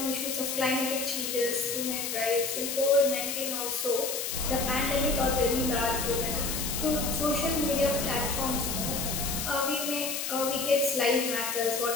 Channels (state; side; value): noise; left; hiss, 3 dB below the sound